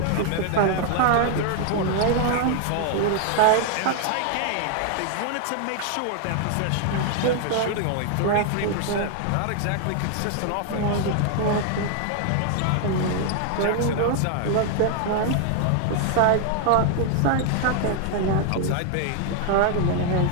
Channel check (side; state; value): both; different; correlation 0.00